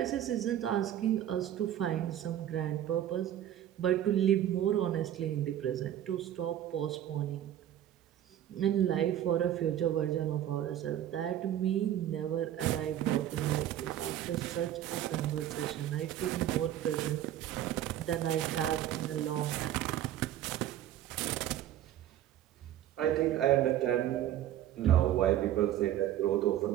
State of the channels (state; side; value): quieter; left; 11.8 dB